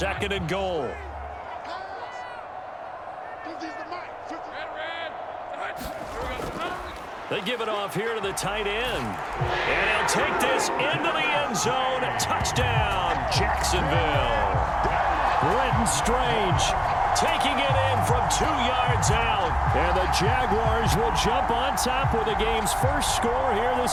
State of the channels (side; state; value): both; identical; correlation 1.00